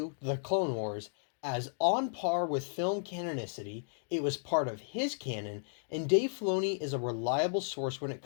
The Clone Wars, as on par with film canonicity. It was part of his canon, and Dave Filoni is a reliable source when it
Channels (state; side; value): silent; right; digital silence